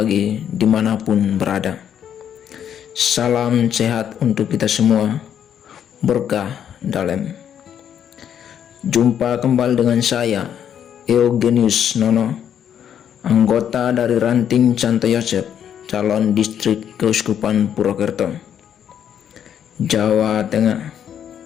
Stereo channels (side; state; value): right; quieter; 9.2 dB